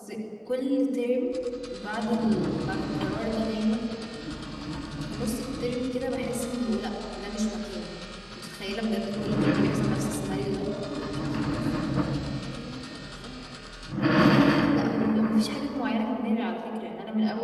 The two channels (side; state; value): both; identical; correlation 1.00